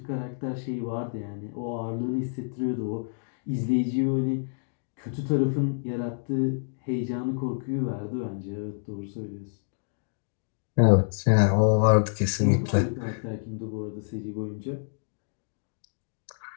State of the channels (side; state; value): right; silent; digital silence